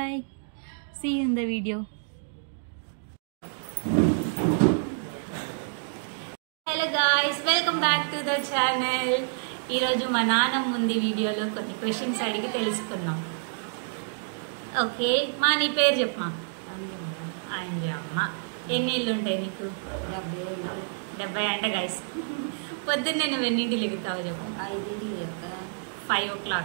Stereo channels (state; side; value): silent; left; digital silence